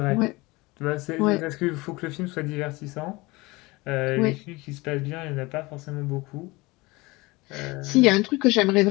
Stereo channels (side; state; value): right; quieter; 22.8 dB